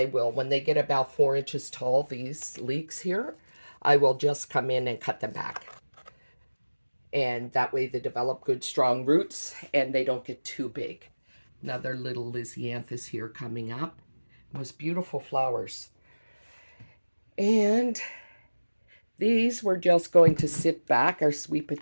will, when they get about 4 inches tall, these leeks here, I will just come in and cut them back. And that way they develop good strong roots and they don't get too big. Another little Lysianthus here coming up. Most beautiful flowers. And these we're just going to sit back, our sweet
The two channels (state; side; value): inverted; both; correlation -1.00